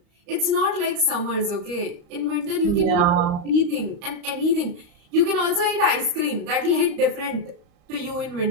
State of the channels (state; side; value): late; left; 35 ms